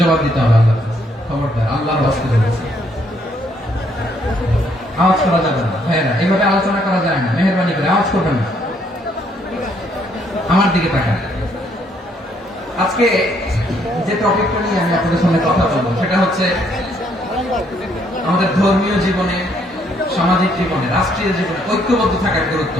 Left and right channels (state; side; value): normal; both; correlation 0.69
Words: দিতে হবে আল্লাহর কাছে। খবরদার, আল্লাহর ওয়াস্তে বলেছে, আওয়াজ করা যাবে না। ভাইয়েরা, এইভাবে আলোচনা করা যায় না, মেহরবানি করে আওয়াজ করবেন না। আমার দিকে তাকান। আজকে যে টপিকটা নিয়ে আমি আপনাদের সামনে কথা বলবো, সেটা হচ্ছে আমাদের ধর্মীয় জীবনে, সামাজিক জীবনে, রাষ্ট্রীয় জীবনে ঐক্যবদ্ধ থাকার গুরুত্ব।